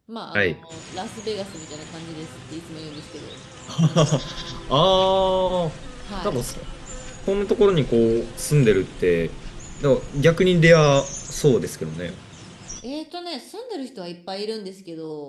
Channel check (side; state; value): both; identical; correlation 1.00